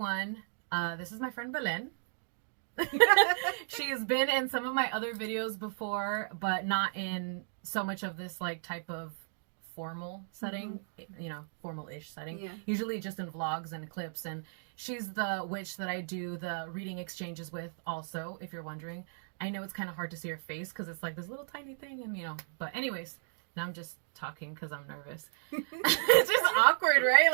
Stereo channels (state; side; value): silent; left; digital silence